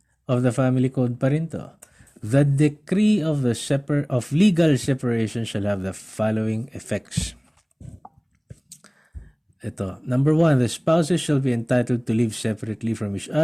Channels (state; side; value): identical; both; correlation 1.00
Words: of the Family Code pa rin to. The decree of legal separation shall have the following effects. Ito. Number 1, the spouses shall be entitled to live separately from each